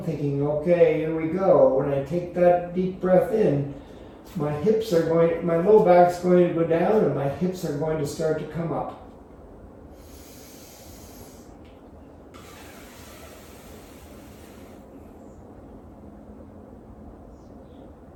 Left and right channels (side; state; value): both; identical; correlation 1.00